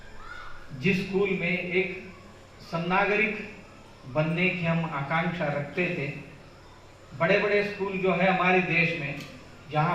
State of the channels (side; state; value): both; identical; correlation 1.00